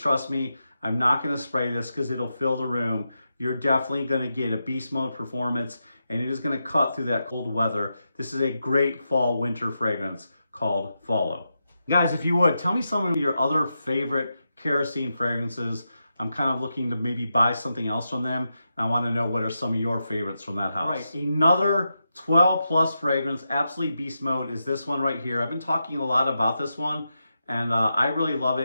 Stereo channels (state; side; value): inverted; both; correlation -0.87